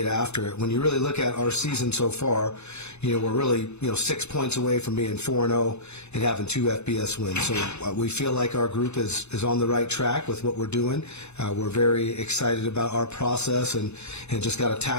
after it. When you really look at our season so far, we're really 6 points away from being 4-0 and having 2 FBS wins. So we feel like our group is on the right track with what we're doing. We're very excited about our process and just got to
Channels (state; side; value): late; right; 0.81 ms